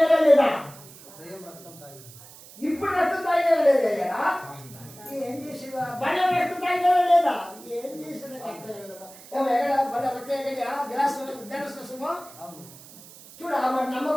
లేదా? ఇప్పుడు రక్తం తాగినా లేదా? ఏం చేసినా బండ రక్తం తాగినా లేదా? ఏం చేసినా రక్తం ఏమో ఎక్కడ బండ రక్తం ఎక్కడ గ్లాసుమో చూడ మరి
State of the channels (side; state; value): right; noise; hiss, 19 dB below the sound